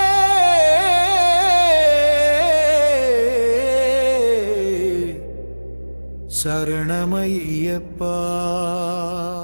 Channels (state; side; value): inverted; both; correlation -1.00